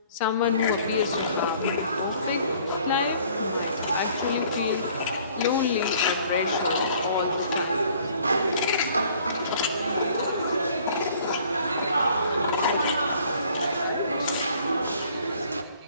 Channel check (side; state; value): both; inverted; correlation -0.57